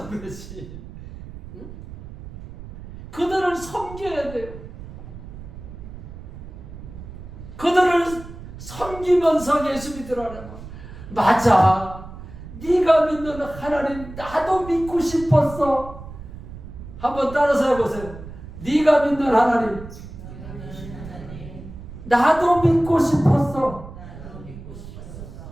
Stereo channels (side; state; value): right; noise; rumble, 13 dB below the sound